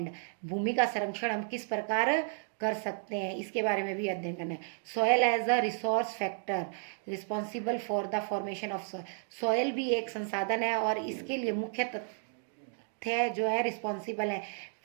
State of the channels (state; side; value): silent; left; digital silence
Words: भूमि का संरक्षण हम किस प्रकार कर सकते हैं, इसके बारे में भी अध्ययन करना है। Soil as a resource factor responsible for the formation of soil. Soil भी एक संसाधन है और इसके लिए मुख्य तथ्य जो है रिस्पॉन्सिबल है